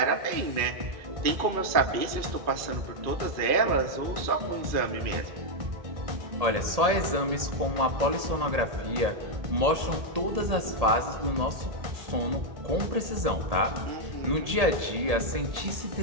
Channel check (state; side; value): late; left; 1.8 ms